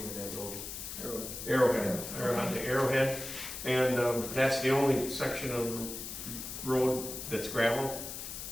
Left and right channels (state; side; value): noise; left; hiss, 8 dB below the sound